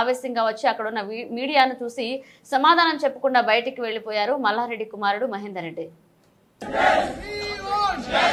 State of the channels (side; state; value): both; identical; correlation 1.00